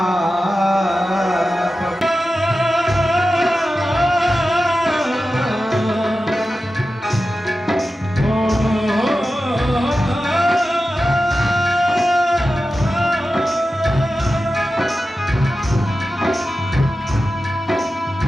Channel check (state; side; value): normal; both; correlation 0.93